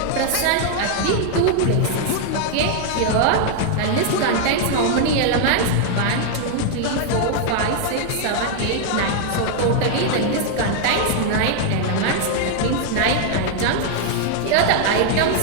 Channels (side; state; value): both; different; correlation 0.00